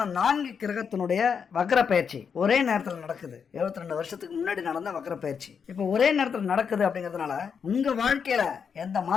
4 கிரகத்தினுடைய வக்ர பயிற்சி ஒரே நேரத்தில் நடக்குது. 72 வருஷத்துக்கு முன்னாடி நடந்த வக்ர பயிற்சி இப்போ ஒரே நேரத்தில் நடக்குது. அப்படிங்கிறதுனால உங்க வாழ்க்கையில எந்த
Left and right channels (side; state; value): right; quieter; 6.6 dB